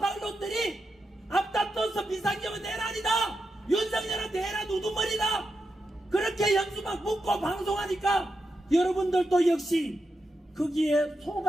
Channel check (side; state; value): both; normal; correlation 0.87